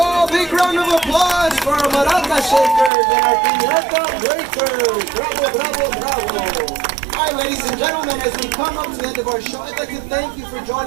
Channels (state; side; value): drops out; left; at 2.9 s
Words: Big round of applause for our maraca shakers and our piñata breakers. Bravo, bravo, bravo. All right, ladies and gentlemen, as we come up to the end of our show, I'd like to thank you for